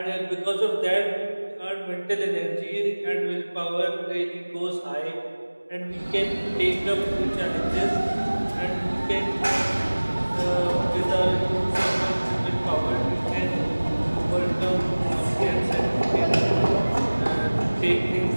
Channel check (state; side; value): inverted; both; correlation -1.00